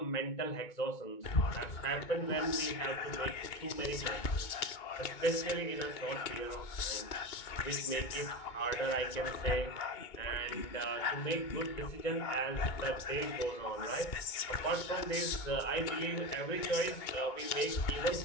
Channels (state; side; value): late; right; 2.2 ms